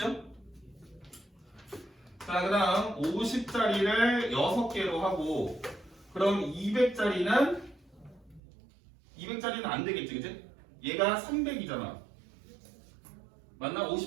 자, 그 다음 50짜리를 6개로 하고 그럼 200짜리는 안 되겠지, 그치? 얘가 300이잖아. 맞나?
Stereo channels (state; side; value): drops out; left; at 8.4 s